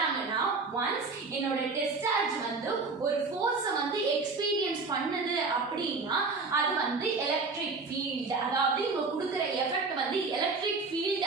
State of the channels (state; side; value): quieter; left; 4.1 dB